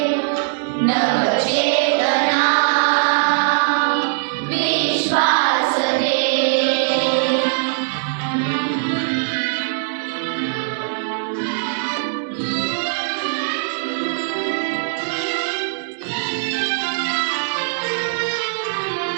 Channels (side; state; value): left; silent; digital silence